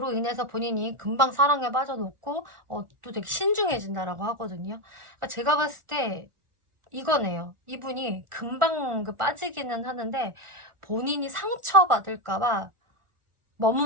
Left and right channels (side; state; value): left; late; 1.4 ms